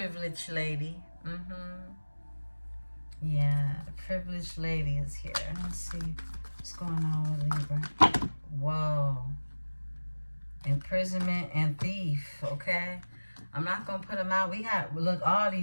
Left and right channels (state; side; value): inverted; both; correlation -1.00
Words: lady. Yeah, the privileged lady is here. Let's see what's going on with Libra. Whoa. Imprisonment and thief, okay? I'm not going to put them out. Look, all